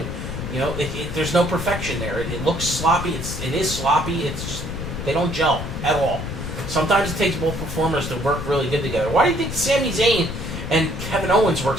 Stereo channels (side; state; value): left; noise; rumble, 6 dB below the sound